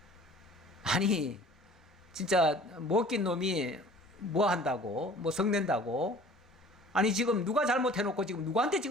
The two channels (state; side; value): normal; both; correlation 0.48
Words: 아니 진짜 먹긴 놈이 뭐 한다고, 뭐 성낸다고. 아니 지금 누가 잘못해놓고 지금 누구한테